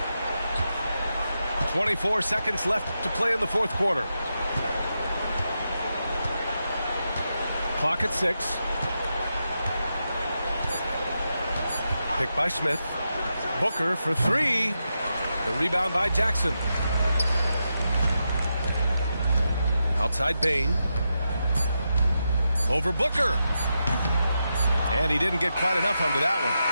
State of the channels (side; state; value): both; inverted; correlation -0.87